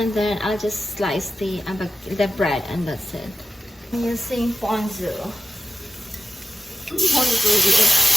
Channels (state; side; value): normal; both; correlation 0.91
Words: then I'll just slice the bread, and that's it. I'm using ponzu.